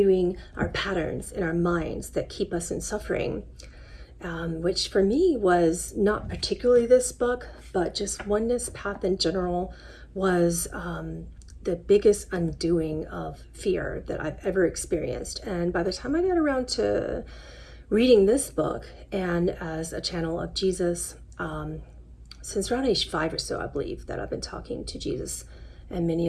our patterns in our minds that keep us in suffering. Which for me was not particularly this book, but just Oneness Path in general was the biggest undoing of fear that I've ever experienced. And by the time I got around to reading this book, and as a channel of Jesus, since around age 5 or so, I believe that I've been talking to Jesus and many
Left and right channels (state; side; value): identical; both; correlation 1.00